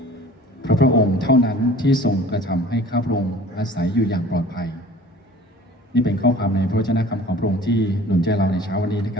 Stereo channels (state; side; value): normal; both; correlation 0.46